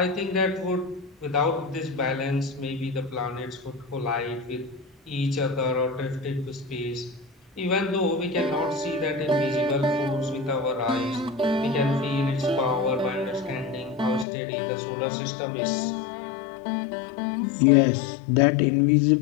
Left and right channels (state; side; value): drops out; right; at 14.2 s